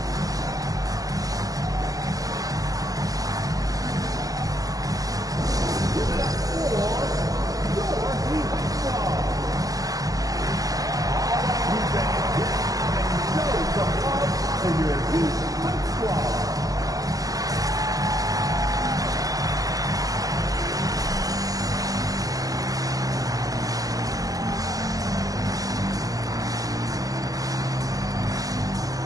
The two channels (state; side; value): late; left; 0.17 ms